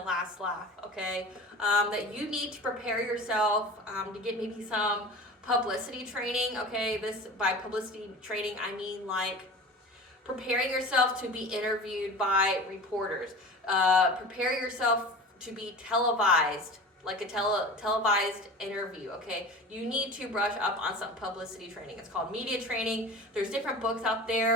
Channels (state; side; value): normal; both; correlation 0.36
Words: last laugh, okay? That you need to prepare yourself to get maybe some publicity training, okay? This, by publicity training, I mean like Preparing yourself to be interviewed by reporters. Prepare yourself to be televised, like a televised interview, okay? You need to brush up on some publicity training. It's called media training. There's different books out